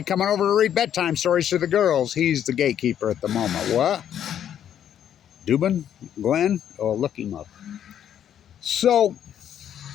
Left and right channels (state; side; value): quieter; right; 9.9 dB